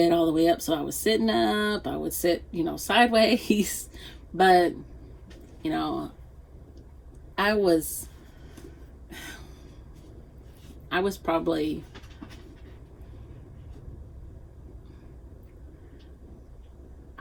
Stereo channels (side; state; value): both; identical; correlation 1.00